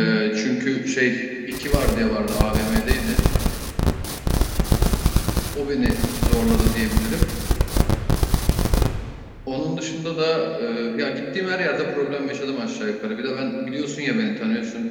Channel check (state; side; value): identical; both; correlation 1.00